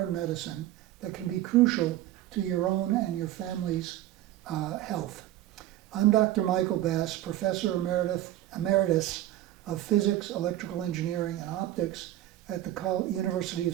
medicine that can be crucial to your own and your family's health. I'm Dr. Michael Bass, Professor Emeritus of Physics, Electrical Engineering, and Optics at the University of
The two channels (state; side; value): quieter; left; 14.0 dB